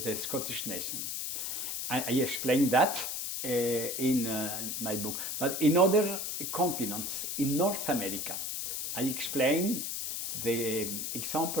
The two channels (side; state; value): left; noise; hiss, 3 dB below the sound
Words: Scottish nation. I explained that in my book. But in other continents, in North America, I explained the